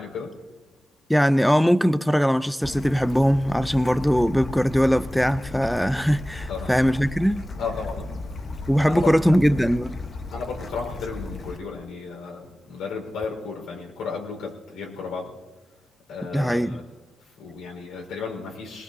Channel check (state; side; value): normal; both; correlation 0.96